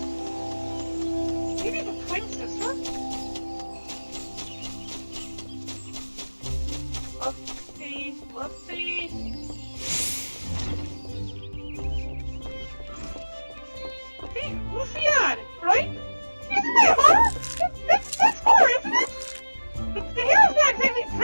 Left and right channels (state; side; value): inverted; both; correlation -1.00